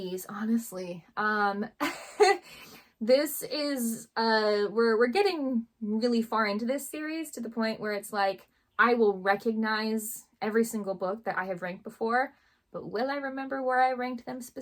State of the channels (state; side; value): identical; both; correlation 1.00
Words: honestly. This is, we're getting really far into this series to the point where it's like, I will recognize every single book that I have ranked before, but will I remember where I ranked them